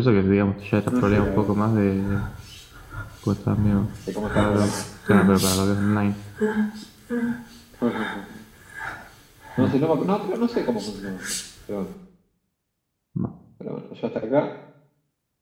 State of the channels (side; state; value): both; identical; correlation 1.00